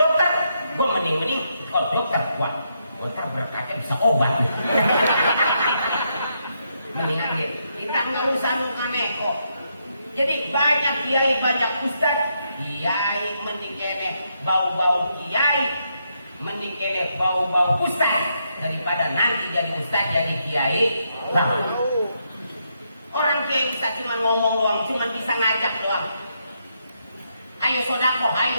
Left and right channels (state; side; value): inverted; both; correlation -0.79